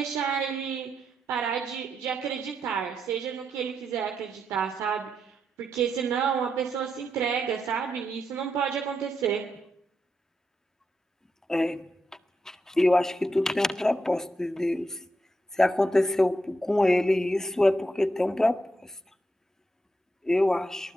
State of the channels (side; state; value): both; normal; correlation 0.83